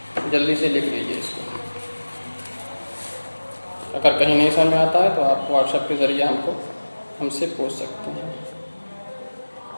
जल्दी से लिख लीजिए इसको। अगर कहीं नहीं समझ में आता है तो आप व्हाट्सएप के ज़रिए हमसे पूछ सकते हैं।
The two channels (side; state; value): both; inverted; correlation -1.00